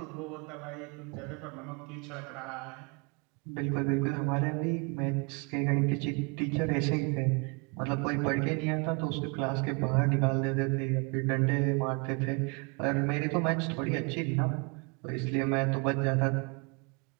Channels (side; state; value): left; quieter; 32.3 dB